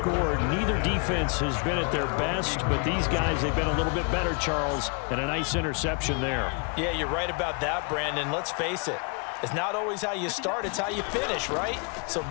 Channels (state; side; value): quieter; right; 36.0 dB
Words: neither defense has been at their best, but these guys, they've been a little bit better, Charles, and a nice interception there. Yeah, you're right about that, Brandon. Let's face it. It's not always how you start, it's how you finish, right? So